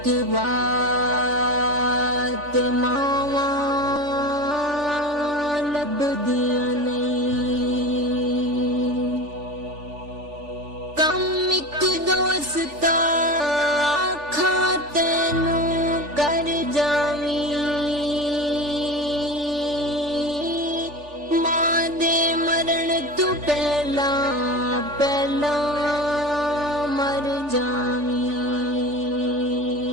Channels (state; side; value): late; left; 3.4 ms